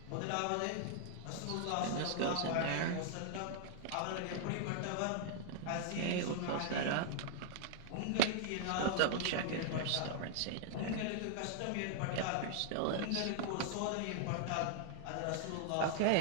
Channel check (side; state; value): both; different; correlation -0.01